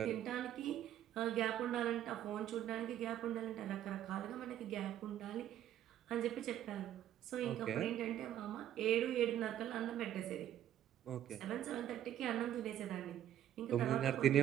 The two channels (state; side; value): quieter; left; 11.4 dB